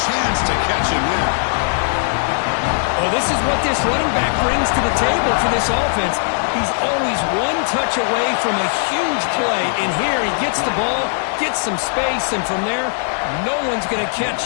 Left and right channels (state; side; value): silent; right; digital silence